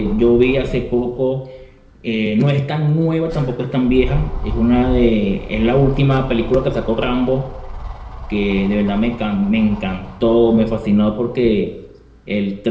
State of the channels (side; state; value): both; identical; correlation 1.00